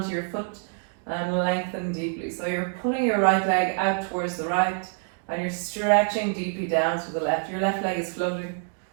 your foot and lengthen deeply. So you're pulling your right leg out towards the right and you're stretching deeply down to the left. Your left leg is floating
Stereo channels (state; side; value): silent; left; 55 dB below the other